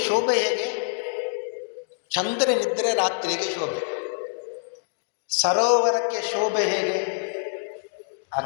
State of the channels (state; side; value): silent; right; digital silence